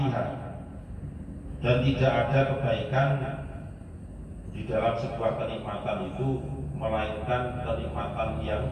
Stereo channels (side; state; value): both; identical; correlation 1.00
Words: dan tidak ada kebaikan di dalam sebuah kenikmatan itu melainkan kenikmatan yang